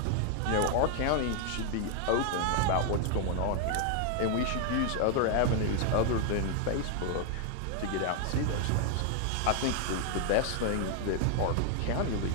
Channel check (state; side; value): different; both; correlation 0.00